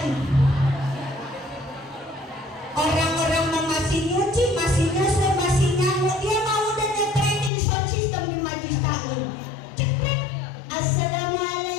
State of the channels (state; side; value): drops out; right; at 7.5 s